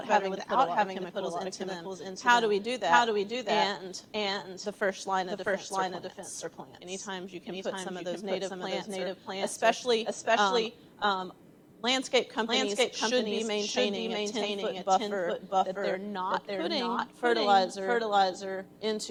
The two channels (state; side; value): identical; both; correlation 1.00